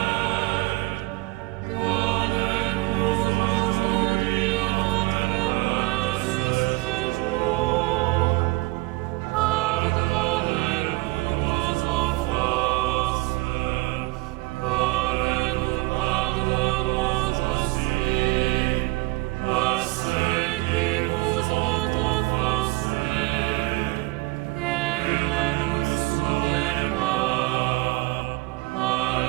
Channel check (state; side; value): quieter; left; 21.8 dB